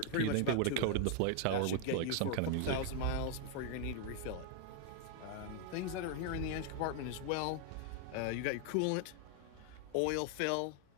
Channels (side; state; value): both; different; correlation 0.00